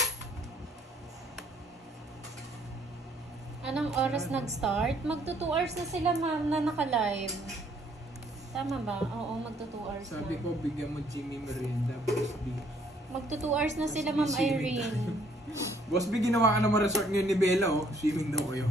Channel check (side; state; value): both; normal; correlation 0.65